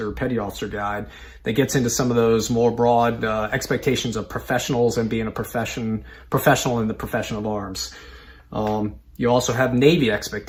Petty Officer Guide that gets into some of those more broad expectations of professionals and being a professional in the profession of arms. You also have Navy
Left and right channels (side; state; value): both; identical; correlation 1.00